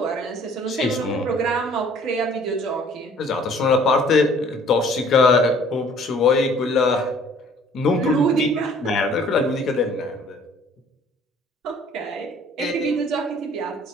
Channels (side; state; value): both; normal; correlation 0.55